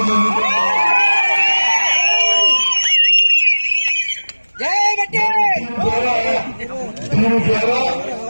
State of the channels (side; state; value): both; inverted; correlation -1.00